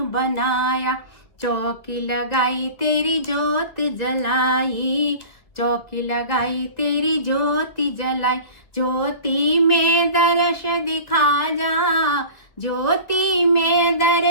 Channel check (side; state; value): right; late; 2.2 ms